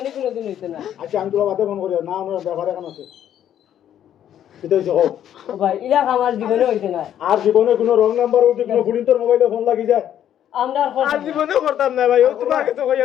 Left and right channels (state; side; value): quieter; right; 10.5 dB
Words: কোনোদিন হইছে না আচ্ছা আমি তোরা বাতে ফোন করি না আমার ব্যাপারে কেন আছে সেটা হচ্ছে হোক ও ভাই ইলা আমার জীবনে হইছে না আর জীবনে কোনো রং নাম্বার উঠে কোনো ফুলিন্তর মোবাইলে ফোন লাগি যায় আমরা আর জীবনেও করতাম না ভাই ও তোমাকে তো কইয়া